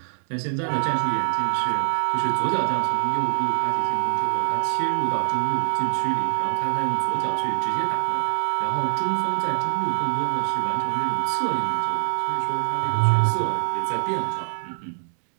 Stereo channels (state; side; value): silent; left; digital silence